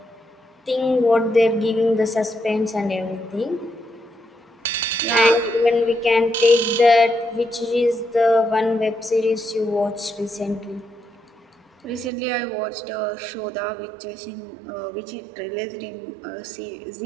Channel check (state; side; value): drops out; left; at 12.1 s